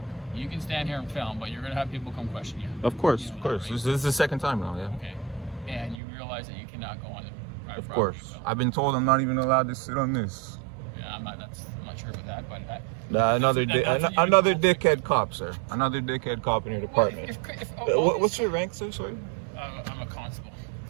you can stand here and film, but you're gonna have people come question you. Of course, You know of that, course. right? This is the second time now, yeah. Okay. And you realize that you cannot go on the private Of property, course. so- I've been told I'm not even allowed to sit on this. Yeah, I'm not sure about that, but Another That's what you another told me. dickhead cop, sir. Another dickhead cop in your department. What's your rank, sir? Sorry. I'm a constable,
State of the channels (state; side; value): drops out; left; at 6.0 s